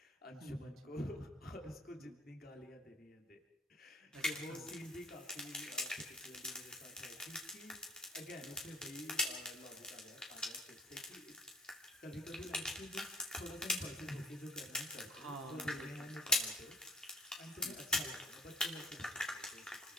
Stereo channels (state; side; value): normal; both; correlation 0.48